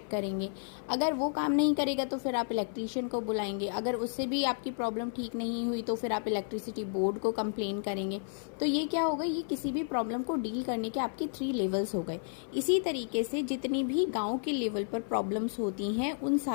करेंगे। अगर वो काम नहीं करेगा तो फिर आप इलेक्ट्रीशियन को बुलाएंगे। अगर उससे भी आपकी प्रॉब्लम ठीक नहीं हुई तो फिर आप इलेक्ट्रिसिटी बोर्ड को कंप्लेन करेंगे। तो ये क्या होगा, ये किसी भी प्रॉब्लम को डील करने के आपके 3 लेवल्स हो गए। इसी तरीके से जितनी भी गाँव के लेवल पर प्रॉब्लम्स होती हैं उन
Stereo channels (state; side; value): silent; right; 56 dB below the other